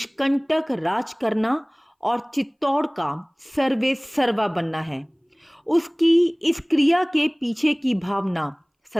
राज करना और चित्तौड़ का सर्वे सर्वा बनना है। उसकी इस क्रिया के पीछे की भावना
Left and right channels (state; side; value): identical; both; correlation 1.00